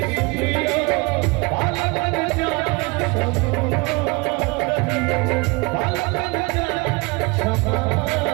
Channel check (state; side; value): quieter; left; 27.0 dB